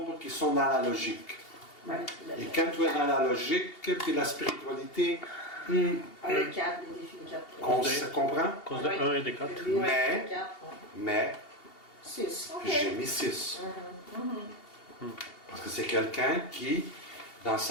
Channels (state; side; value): late; right; 2.8 ms